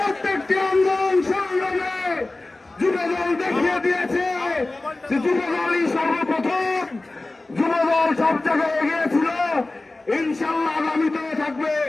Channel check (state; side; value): quieter; right; 3.0 dB